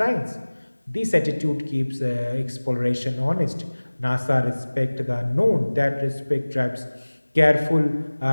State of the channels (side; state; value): both; inverted; correlation -1.00